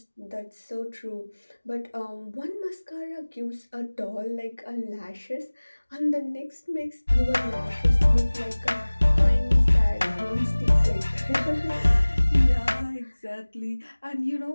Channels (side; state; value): both; inverted; correlation -1.00